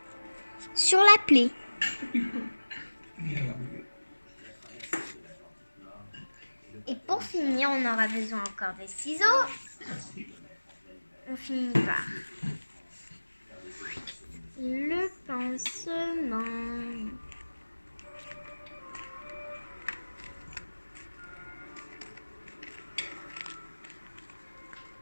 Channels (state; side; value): inverted; both; correlation -1.00